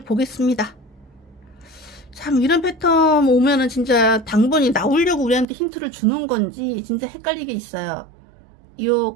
보겠습니다. 참 이런 패턴 오면은 진짜 당번이 나오려고 우리한테 힌트를 주는 건지 진짜 헷갈리게 있어요. 요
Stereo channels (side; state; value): left; drops out; at 5.5 s